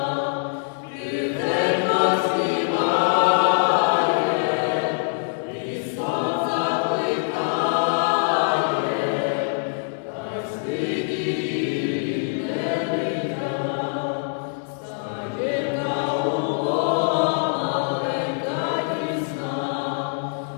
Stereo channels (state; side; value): silent; right; 62 dB below the other